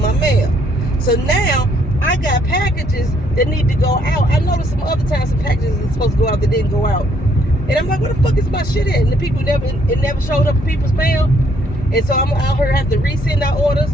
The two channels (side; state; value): both; normal; correlation 0.68